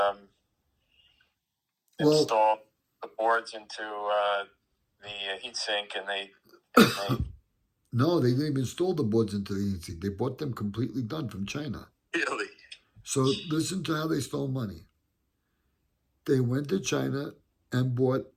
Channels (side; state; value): both; identical; correlation 1.00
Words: install the boards into the heatsink and they No, they didn't even install the boards into the heatsink. They bought them completely done from China. Really? So listen to how they stole money. They went to China and bought